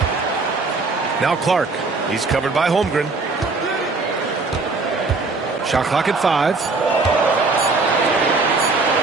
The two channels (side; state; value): left; quieter; 3.8 dB